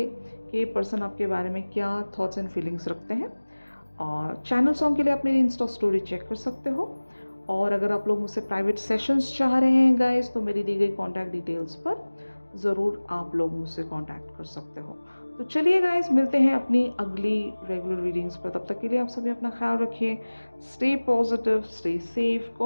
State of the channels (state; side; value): inverted; both; correlation -1.00